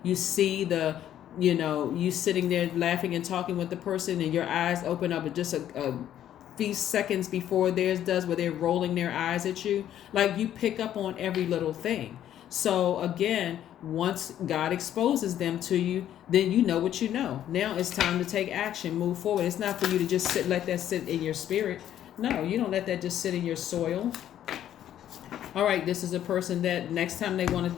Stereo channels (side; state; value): right; quieter; 11.2 dB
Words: You see you sitting there laughing and talking with the person, and your eyes open up just a few seconds before theirs does, where they're rolling their eyes at you. You pick up on every little thing. So again, once God exposes them to you, then you know what you know. Now it's time to take action, move forward. It's not for you to just let that sit in your spirit. No, you don't let that just sit in your soil. All right, this is a person that next time they want